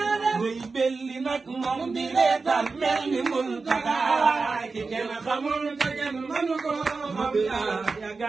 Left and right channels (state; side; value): quieter; left; 4.2 dB